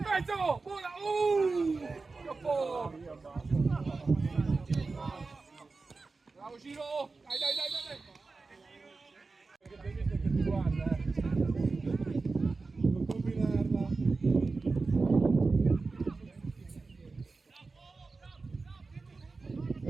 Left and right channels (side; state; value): left; quieter; 4.0 dB